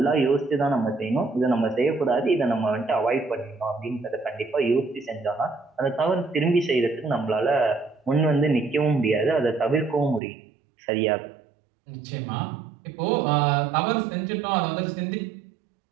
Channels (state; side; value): drops out; left; at 10.2 s